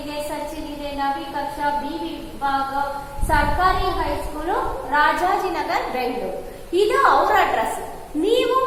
ಸಚಿನ್ ಇದೆ, ನವಿ ಕಕ್ಷಾ, ಬಿ ವಿಭಾಗ, ಸರ್ಕಾರಿ ಹೈಸ್ಕೂಲು, ರಾಜಾಜಿನಗರ್, ಬೆಂಗಳೂರು. ಇದು ಅವರ ಅಡ್ರೆಸ್. ನೀವು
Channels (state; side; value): identical; both; correlation 1.00